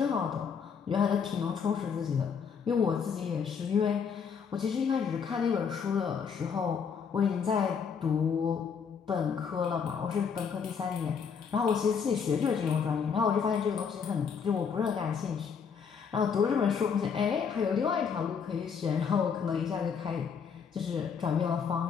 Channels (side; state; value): right; quieter; 6.5 dB